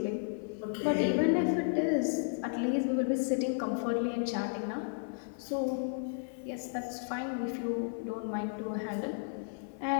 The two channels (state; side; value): silent; right; 56 dB below the other